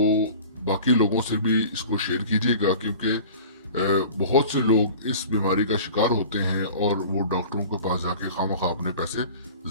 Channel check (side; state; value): both; inverted; correlation -0.41